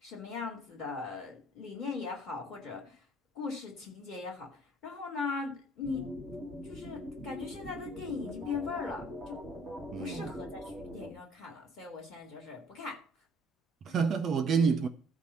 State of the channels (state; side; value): normal; both; correlation 0.59